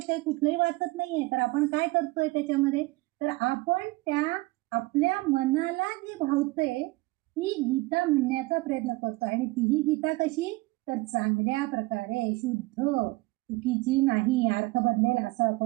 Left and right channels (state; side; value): quieter; left; 22.0 dB